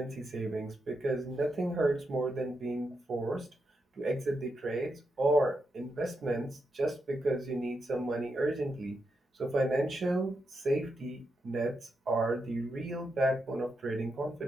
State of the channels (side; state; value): both; normal; correlation 0.84